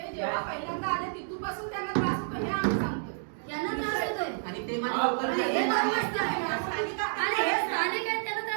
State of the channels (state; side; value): silent; left; digital silence